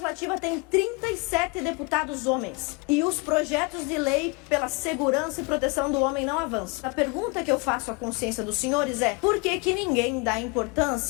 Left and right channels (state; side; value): quieter; right; 29.6 dB